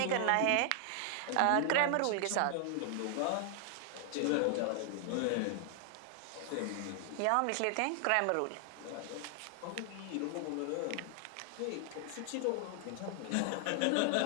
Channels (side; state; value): both; different; correlation 0.00